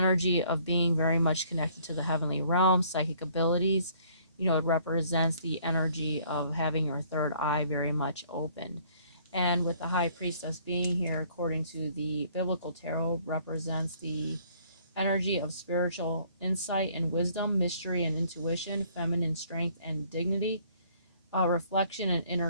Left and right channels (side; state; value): both; inverted; correlation -0.60